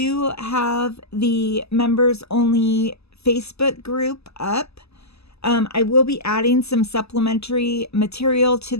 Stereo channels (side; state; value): right; late; 0.79 ms